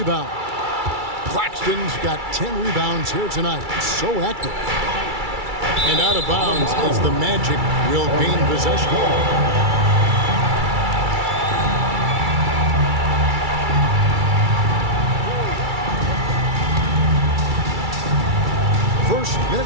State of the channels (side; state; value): left; late; 2.3 ms